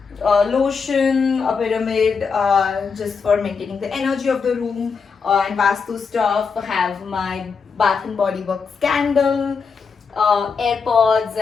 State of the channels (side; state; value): right; quieter; 5.5 dB